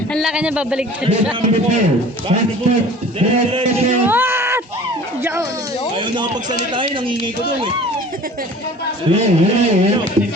Ang laki niya, babaligtad siya. What? Diyan. Ayaw na pagsalitain, nangingi ko doon eh.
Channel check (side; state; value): both; normal; correlation 0.45